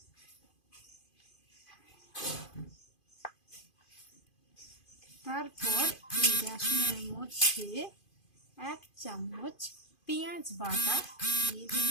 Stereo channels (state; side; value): late; right; 2.5 ms